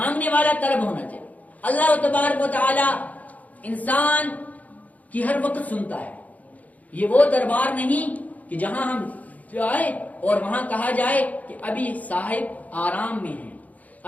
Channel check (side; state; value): right; late; 0.074 ms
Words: والا طلب ہونا چاہیے۔ اللہ تبارک و تعالی انسان کی ہر وقت سنتا ہے، یہ وہ دربار نہیں کہ جہاں ہم جائیں اور وہاں کہا جائے کہ ابھی صاحب آرام میں ہیں،